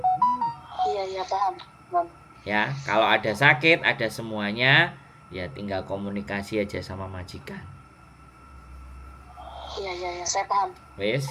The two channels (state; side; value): identical; both; correlation 1.00